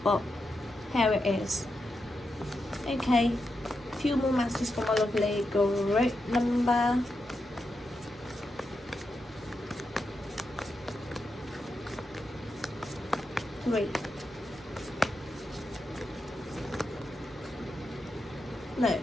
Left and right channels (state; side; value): normal; both; correlation 0.86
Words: but here it is. Okay, few more messages from my lovely group number. Three. No,